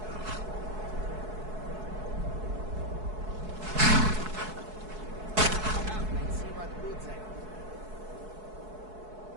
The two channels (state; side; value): late; left; 4.7 ms